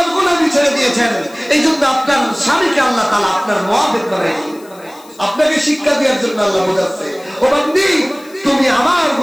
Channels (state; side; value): noise; left; hiss, 25 dB below the sound